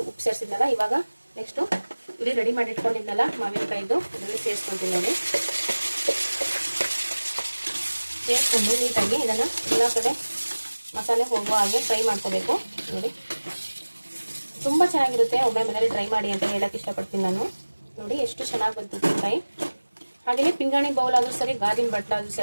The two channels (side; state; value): both; inverted; correlation -1.00